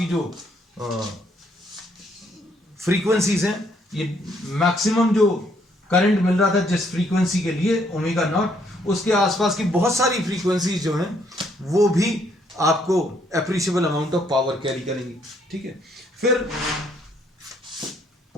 जो फ्रीक्वेंसीज हैं, ये मैक्सिमम जो करंट मिल रहा था जिस फ्रीक्वेंसी के लिए ओमेगा नॉट, उसके आसपास की बहुत सारी फ्रीक्वेंसीज जो हैं वो भी आपको appreciable amount of power carry करेंगी, ठीक है। फिर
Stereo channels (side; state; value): both; normal; correlation 0.69